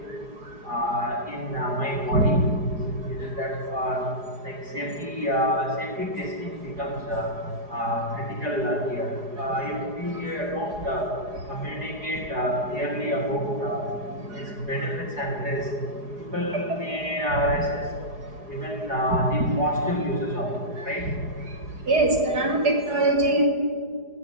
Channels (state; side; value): late; left; 4.8 ms